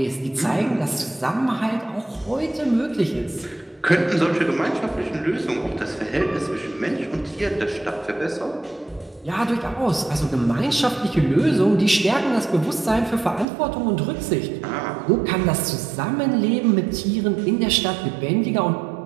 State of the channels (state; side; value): drops out; left; at 13.5 s